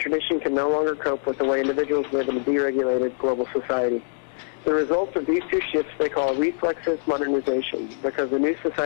can no longer cope with the way individuals live in a deregulated global society. The results of these two shifts they call reflexive modernization, because the new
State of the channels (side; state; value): right; silent; digital silence